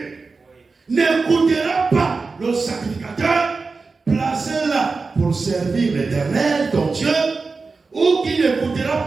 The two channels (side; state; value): left; quieter; 4.2 dB